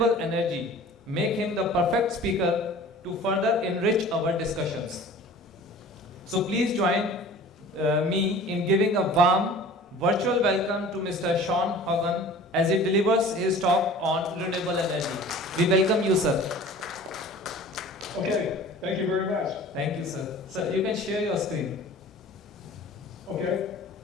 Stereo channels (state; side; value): normal; both; correlation 0.43